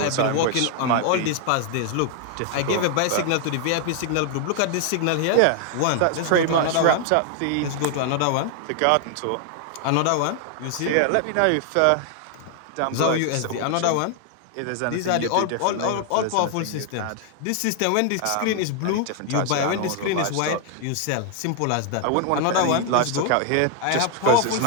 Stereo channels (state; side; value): different; both; correlation 0.00